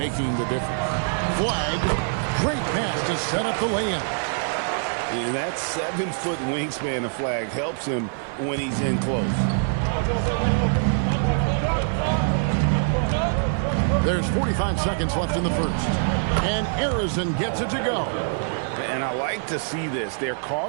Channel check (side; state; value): left; silent; 55 dB below the other